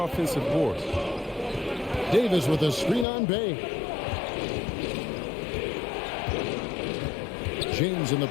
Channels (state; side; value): drops out; right; at 3.1 s